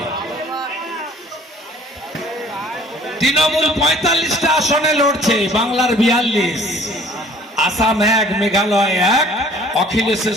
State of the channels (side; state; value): both; normal; correlation 0.53